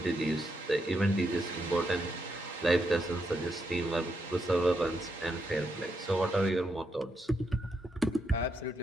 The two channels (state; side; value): normal; both; correlation 0.81